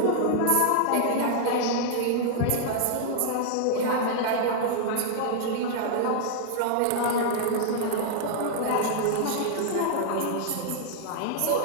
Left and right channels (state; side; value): different; both; correlation -0.01